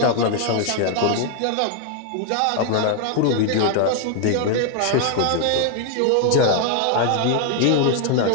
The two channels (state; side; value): different; both; correlation 0.00